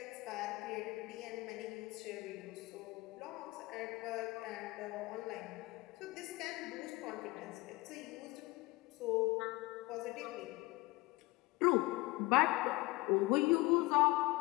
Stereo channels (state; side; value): quieter; right; 22.0 dB